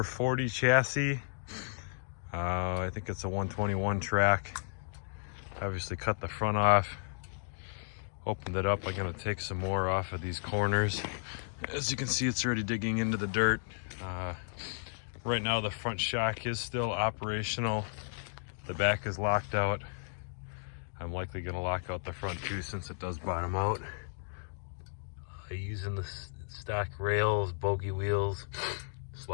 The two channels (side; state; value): right; silent; digital silence